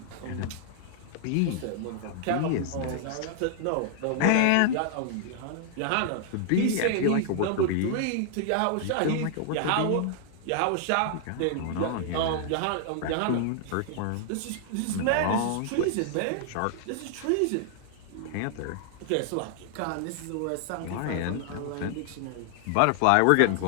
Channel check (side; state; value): both; different; correlation 0.00